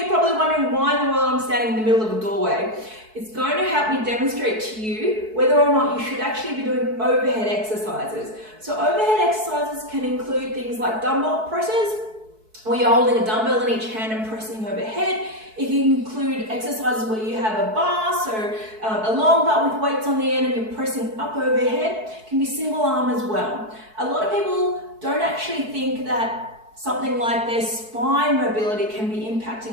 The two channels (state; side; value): late; left; 4.6 ms